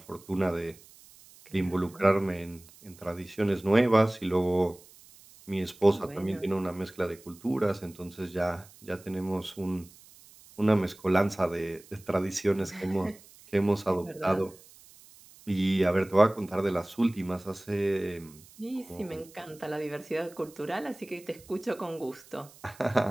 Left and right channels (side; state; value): right; noise; hiss, 23 dB below the sound